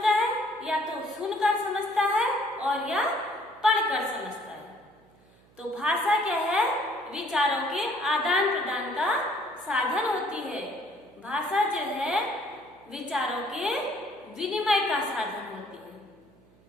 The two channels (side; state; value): right; noise; hum, 29 dB below the sound